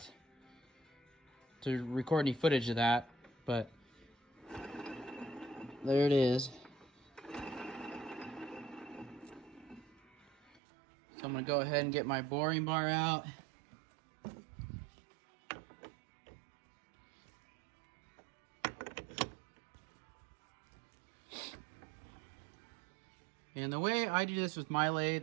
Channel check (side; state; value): left; drops out; at 10.6 s